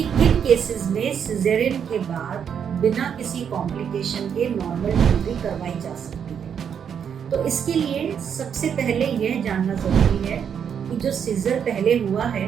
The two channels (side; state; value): left; quieter; 7.8 dB